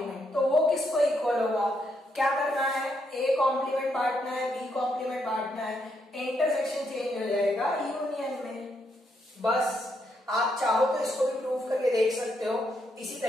तो वो किसको इक्वल होगा, क्या करना है, ए कॉम्प्लीमेंट बांटना है, बी कॉम्प्लीमेंट बांटना है, इंटरसेक्शन चेंज हो जाएगा यूनियन में। बस आप चाहो तो इसको भी प्रूव करके देख सकते हो इसी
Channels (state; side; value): normal; both; correlation 0.77